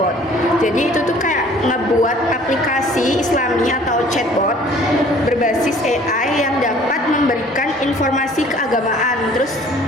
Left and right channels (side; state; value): both; normal; correlation 0.53